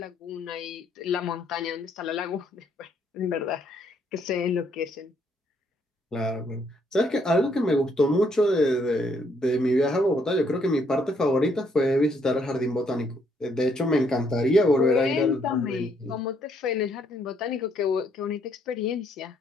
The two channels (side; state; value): both; normal; correlation 0.70